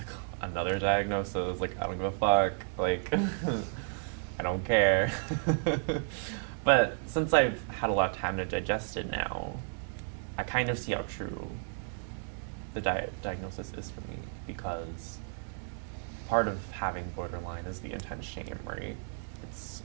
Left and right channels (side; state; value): left; silent; 56 dB below the other